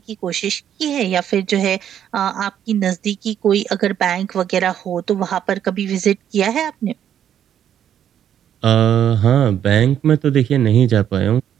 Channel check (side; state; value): left; quieter; 9.8 dB